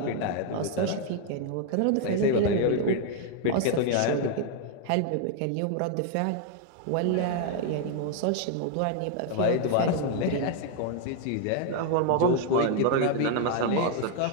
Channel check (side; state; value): both; different; correlation 0.00